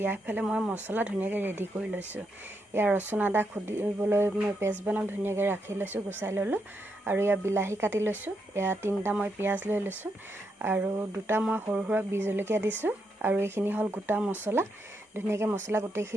ইয়াৰফালে মই মছলা ধুনীয়াকৈ ৰেডি কৰি লৈছোঁ। এয়া ৰচুন আদা খুন্দিবলৈ মই পেষ্ট বনাম ধুনীয়াকৈ ৰাখি লৈছোঁ, গুচাই ল'লোঁ আৰু এয়া বিলাহী কাটি লৈছোঁ। এয়া 3টা মই পিঁয়াজ লৈ লৈছোঁ আৰু 2টা মই সৰু সৰু বি জলকীয়া দিছোঁ আৰু এইখিনি হ'ল গোটা মছলা। ধুনীয়াকৈ মছলা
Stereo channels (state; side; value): normal; both; correlation 0.81